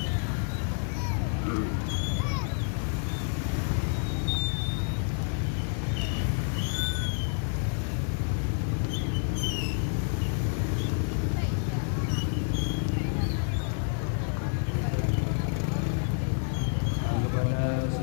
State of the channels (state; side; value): silent; right; 55 dB below the other